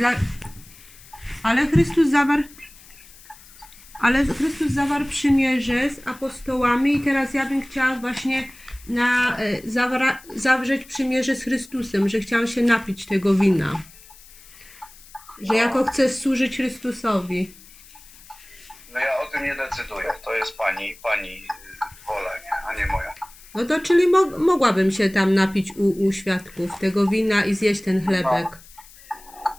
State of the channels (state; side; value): noise; left; hiss, 22 dB below the sound